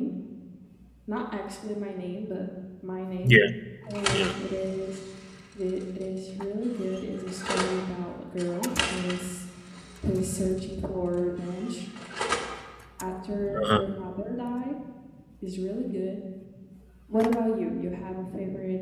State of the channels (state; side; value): identical; both; correlation 1.00